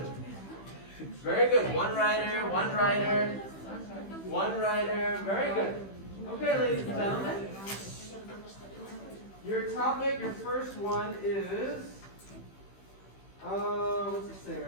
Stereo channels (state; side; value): late; right; 15 ms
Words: Very good. One writer, one writer, one writer. Very good. Okay, ladies and gentlemen. Your topic, your first one is, what's it say